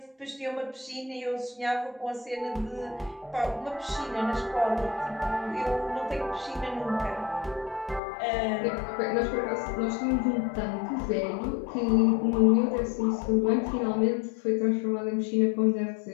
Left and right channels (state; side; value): drops out; right; at 8.0 s